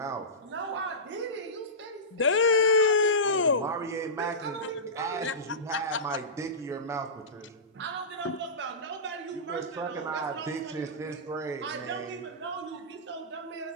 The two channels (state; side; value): normal; both; correlation -0.18